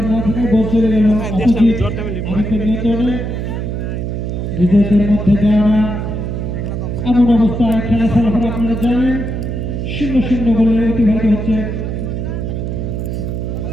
না থাকায় বল চলে গেল অপোজিট আরিফের নিয়ন্ত্রণে নিজেদের মধ্যে দেওয়া এমন অবস্থায় খেলা ফলাফল আপনারা জানেন 0-0 বলে অতিবাহিত হচ্ছে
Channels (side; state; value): right; noise; hum, 3 dB below the sound